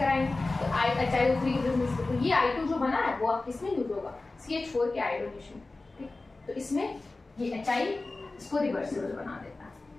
तो HiO3 की प्रेजेंस से, तो ये I2 जो बना है वो आप किसमें यूज होगा, CH4 के आयोडीनेशन। ठीक, तो इसमें ये Hi इसको रिवर्सिबल बना देता है।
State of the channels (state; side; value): quieter; right; 3.3 dB